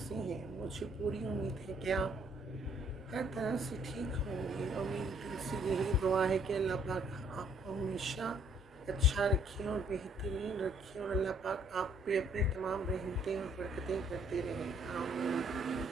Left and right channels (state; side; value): normal; both; correlation 0.64